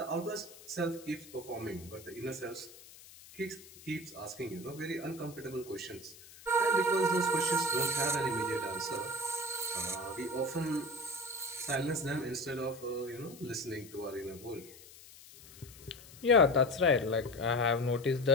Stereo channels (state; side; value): noise; left; hiss, 19 dB below the sound